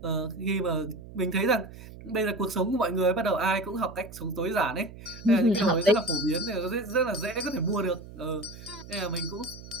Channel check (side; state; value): right; noise; hum, 16 dB below the sound